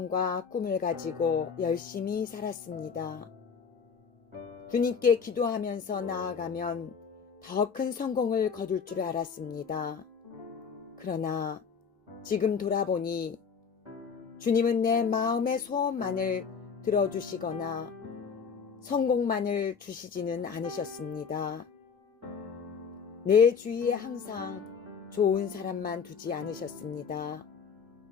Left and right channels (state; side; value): quieter; right; 6.2 dB